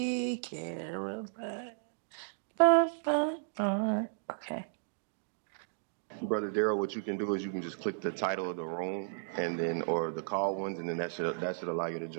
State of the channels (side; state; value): left; silent; digital silence